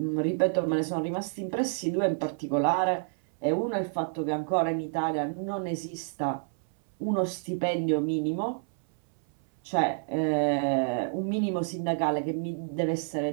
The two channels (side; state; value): left; silent; 58 dB below the other